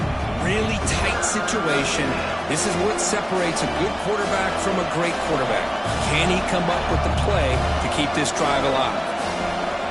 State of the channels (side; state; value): both; identical; correlation 1.00